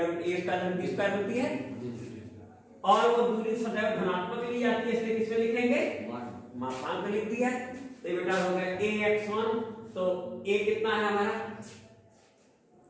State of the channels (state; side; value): identical; both; correlation 1.00